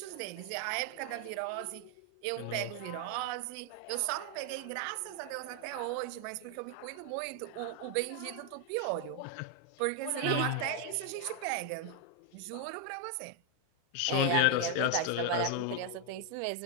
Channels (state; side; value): different; both; correlation 0.00